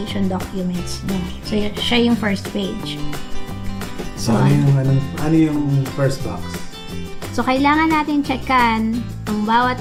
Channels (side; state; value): both; identical; correlation 1.00